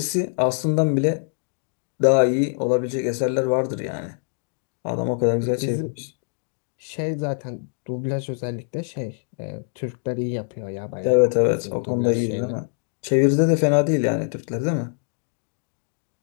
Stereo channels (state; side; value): silent; right; digital silence